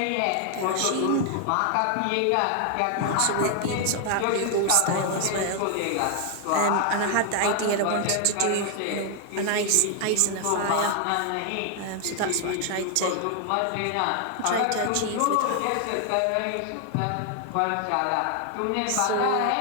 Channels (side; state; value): both; different; correlation 0.00